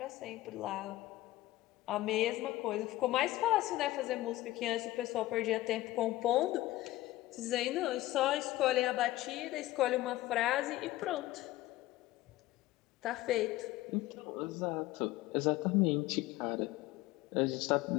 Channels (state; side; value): quieter; right; 16.7 dB